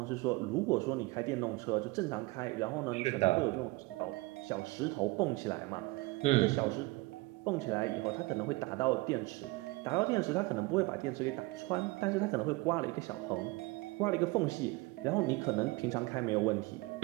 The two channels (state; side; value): quieter; left; 22.7 dB